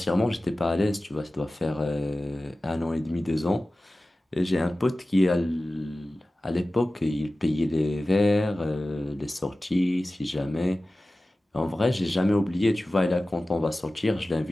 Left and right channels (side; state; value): both; normal; correlation 0.96